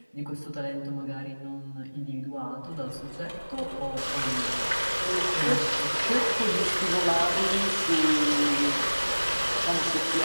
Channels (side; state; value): both; inverted; correlation -1.00